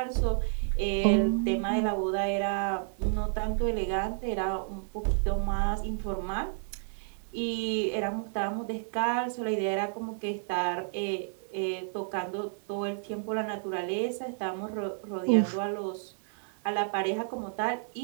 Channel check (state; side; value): silent; left; digital silence